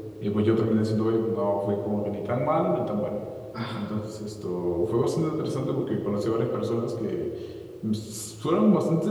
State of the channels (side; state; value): both; identical; correlation 1.00